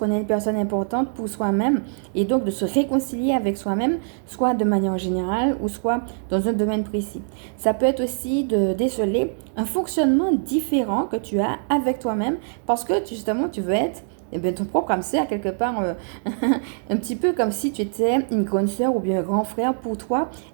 est une personne importante pour soi-même et donc de se réconcilier avec soi-même, soit de manière générale ou soit dans un domaine précis. Ça peut être aussi de déceler un fonctionnement différent que tu as avec toi-même parce que justement tu veux être ton propre âme sœur, quelque part, un petit peu comme si tu étais une grande sœur ou bien un grand frère pour toi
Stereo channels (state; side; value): silent; left; 63 dB below the other